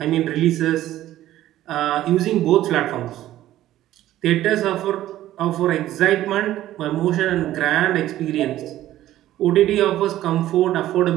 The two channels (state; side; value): quieter; left; 13.9 dB